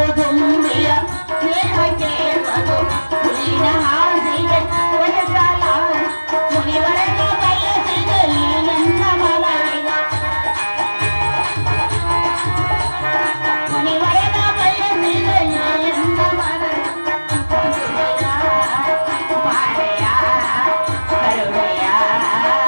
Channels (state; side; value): inverted; both; correlation -1.00